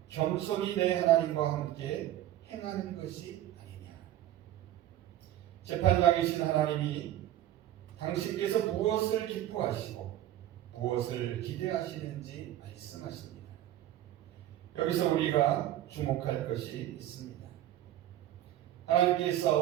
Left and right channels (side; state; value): left; quieter; 13.1 dB